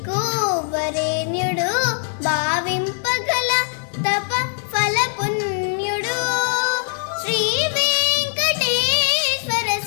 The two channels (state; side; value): silent; right; 63 dB below the other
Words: వరేణ్యుడు భావింపగల తప ఫల పుణ్యుడు శ్రీ వెంకటేశ్వర